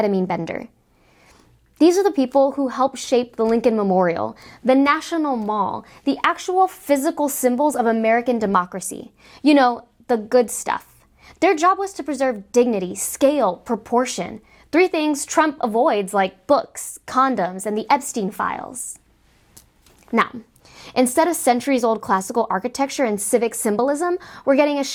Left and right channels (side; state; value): both; identical; correlation 1.00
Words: bender. These are the people who helped shape the Lincoln Memorial, the National Mall, the actual physical symbols of American democracy. You know, the good stuff. Their job was to preserve dignity, scale, proportion. 3 things Trump avoids, like books, condoms, and the Epstein files. Now, instead of centuries-old classical architecture and civic symbolism, we're getting a